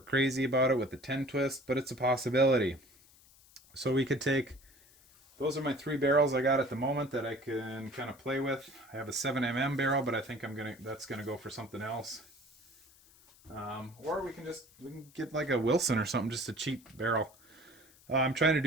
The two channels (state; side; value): noise; left; hiss, 27 dB below the sound